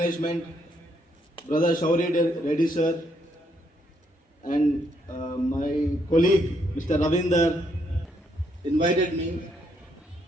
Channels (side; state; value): both; normal; correlation 0.74